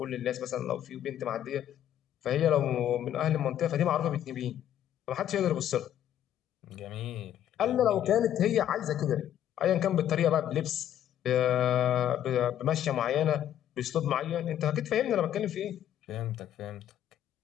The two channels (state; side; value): quieter; right; 11.0 dB